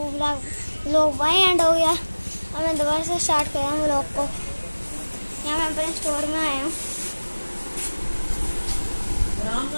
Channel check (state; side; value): inverted; both; correlation -1.00